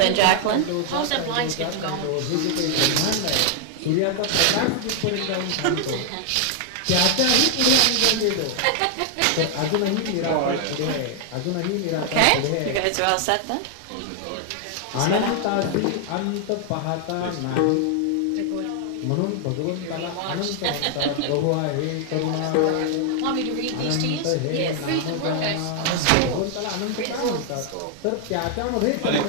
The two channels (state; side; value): different; both; correlation 0.00